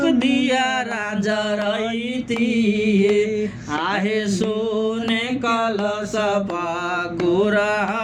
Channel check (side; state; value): both; identical; correlation 1.00